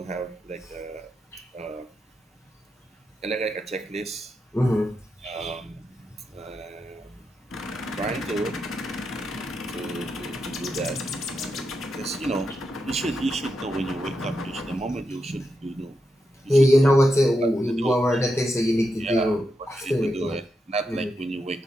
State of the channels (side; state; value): both; normal; correlation 0.85